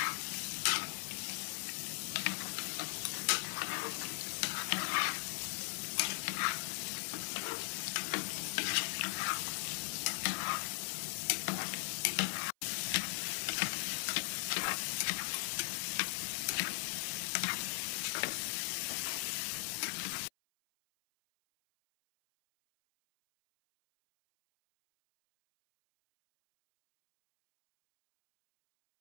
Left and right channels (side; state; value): right; silent; 52 dB below the other